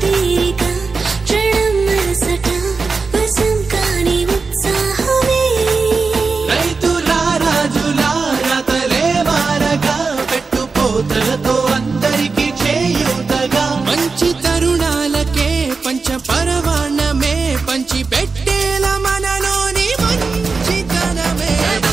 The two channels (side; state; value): left; quieter; 4.4 dB